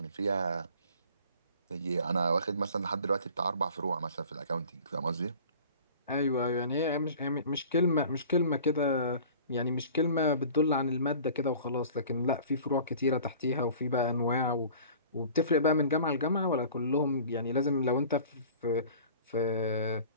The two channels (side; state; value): both; inverted; correlation -0.45